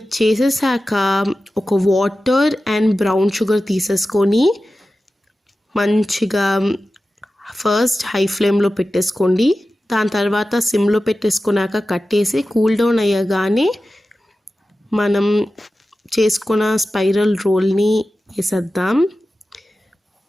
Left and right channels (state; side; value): normal; both; correlation 0.94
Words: చేసేసాక ఒక వాటర్ అండ్ బ్రౌన్ షుగర్ తీసేసుకొని మంచిగా ఫస్ట్ హై ఫ్లేమ్లో పెట్టేసుకోండి. దాని తర్వాత సిమ్లో పెట్టేసుకున్నాక కట్టేసి కూల్ డౌన్ అయ్యగానే మనం చేసుకున్న స్పైరల్ రోల్ని వేసేద్దాం.